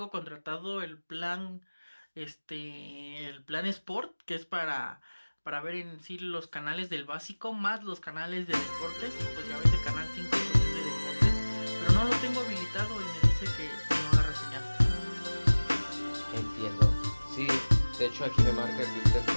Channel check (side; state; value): both; inverted; correlation -1.00